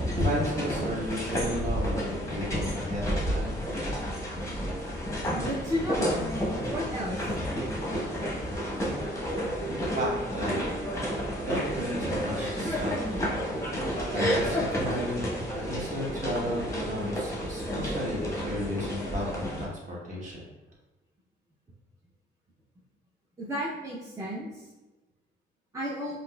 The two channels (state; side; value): normal; both; correlation 0.57